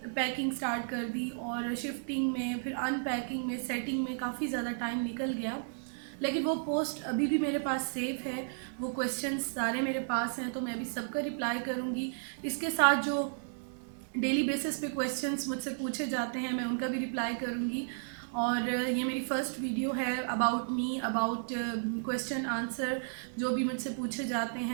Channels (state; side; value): silent; left; digital silence